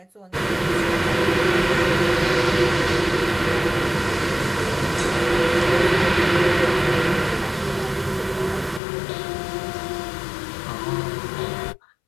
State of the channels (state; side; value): drops out; right; at 8.8 s